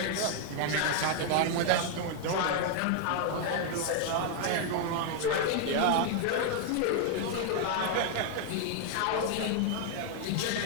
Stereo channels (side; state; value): both; different; correlation 0.00